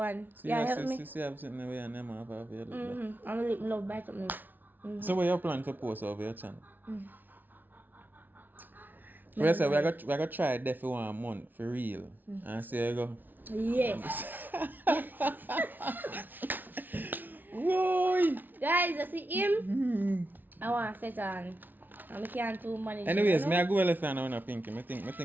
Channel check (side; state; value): left; late; 0.087 ms